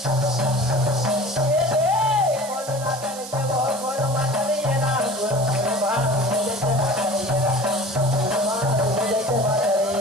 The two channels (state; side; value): noise; right; hiss, 13 dB below the sound